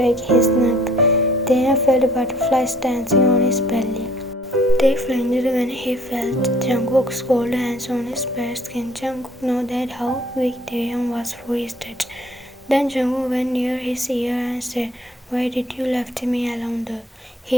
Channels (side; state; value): both; normal; correlation 0.58